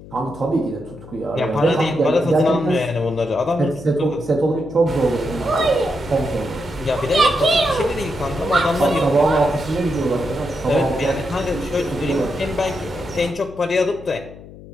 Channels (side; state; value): left; noise; hum, 17 dB below the sound